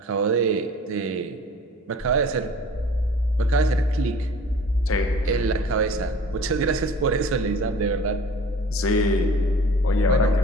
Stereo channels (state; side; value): normal; both; correlation 0.46